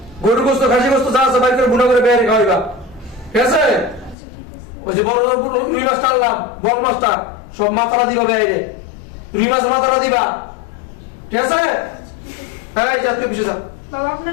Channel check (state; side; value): drops out; right; at 4.2 s